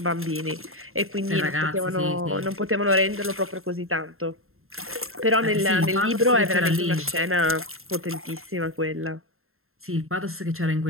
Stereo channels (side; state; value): left; late; 0.61 ms